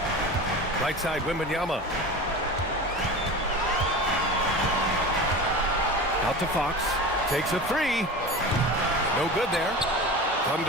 Right side, Wembanyama. Out to Fox. Takes a 3. No good there.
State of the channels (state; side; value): normal; both; correlation 0.31